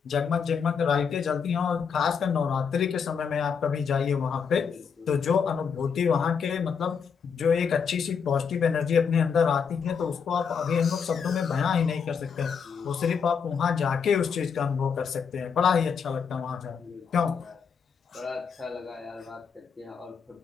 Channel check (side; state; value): right; quieter; 6.4 dB